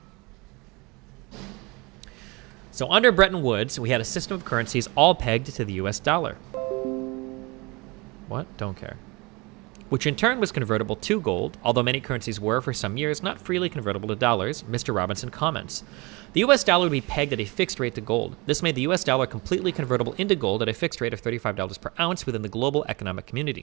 So under Bretton Woods, we had a system of currencies all pegged to the U.S. dollar. What? Don't care. Which in turn was convertible to gold, although many currencies were, for some years, not freely convertible to dollars, Mr. Robinson comments. The US dollar would be pegged at a fixed rate to gold. This made the US dollar completely convertible into gold at a fixed rate of $35 per ounce within the global economic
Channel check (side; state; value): left; quieter; 25.9 dB